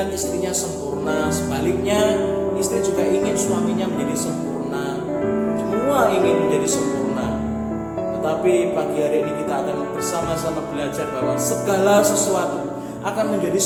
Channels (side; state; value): both; identical; correlation 1.00